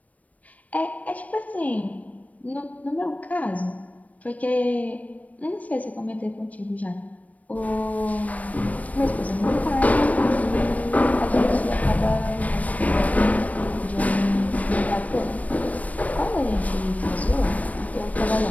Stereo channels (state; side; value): late; right; 0.070 ms